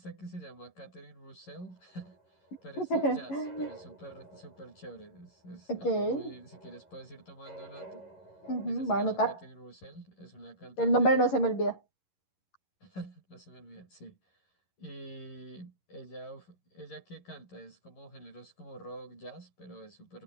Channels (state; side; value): late; right; 11 ms